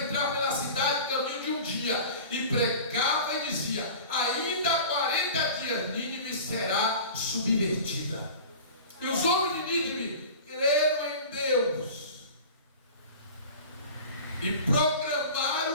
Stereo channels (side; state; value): both; inverted; correlation -0.38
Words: pela cidade caminho de um dia. E pregava e dizia: ainda 40 dias Nínive será subvertida. E os homens de Nínive creram em Deus e